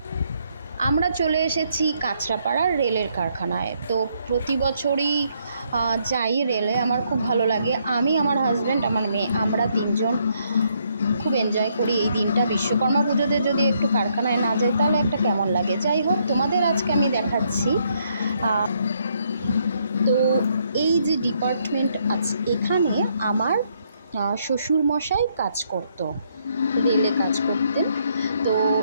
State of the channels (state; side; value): inverted; both; correlation -0.73